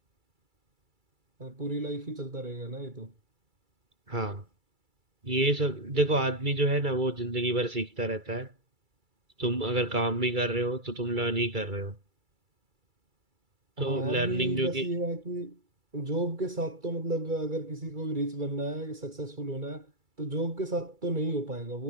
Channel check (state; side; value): late; left; 2.3 ms